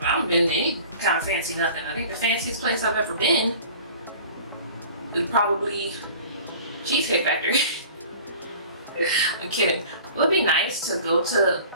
been to any kind of fancy nothing. I think the fanciest place I've ever been is probably Cheesecake Factory. I'm kidding. It would be nice to go to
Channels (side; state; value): both; inverted; correlation -0.45